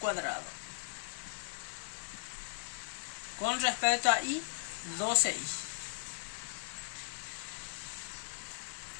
Con respecto a y, 12y.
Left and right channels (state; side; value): silent; right; digital silence